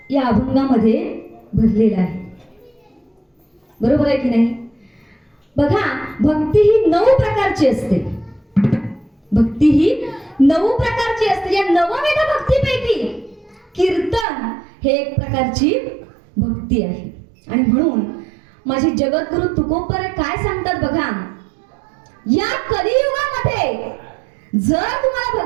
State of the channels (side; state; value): left; drops out; at 14.2 s